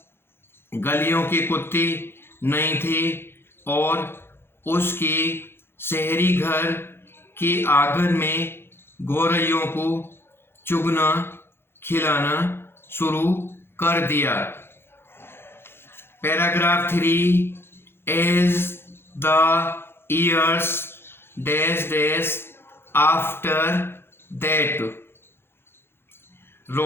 गलियों के कुत्ते नहीं थे और उसके शहरी घर के आंगन में गौरैयों को चुगना खिलाना शुरू कर दिया। Paragraph 3 as the years dash dash after that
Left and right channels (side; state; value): right; late; 0.11 ms